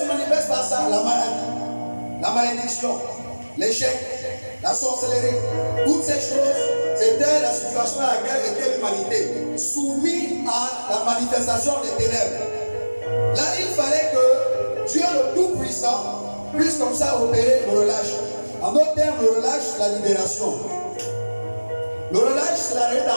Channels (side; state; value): both; inverted; correlation -1.00